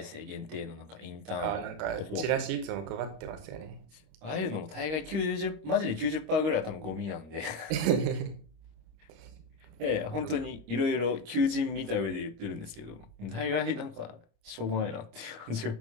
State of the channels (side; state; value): left; late; 26 ms